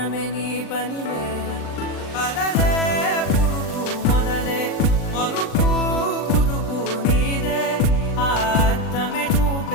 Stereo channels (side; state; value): right; late; 39 ms